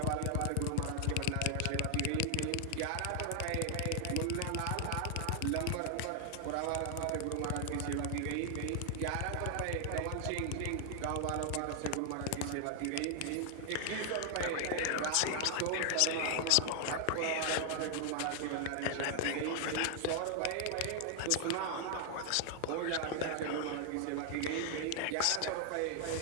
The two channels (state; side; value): different; both; correlation 0.00